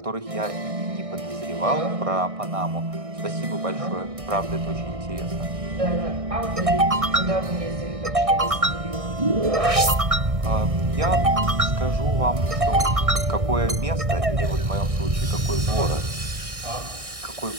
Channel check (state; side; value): late; left; 1.6 ms